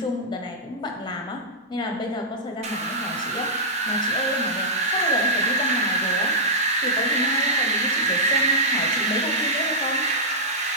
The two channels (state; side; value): normal; both; correlation -0.10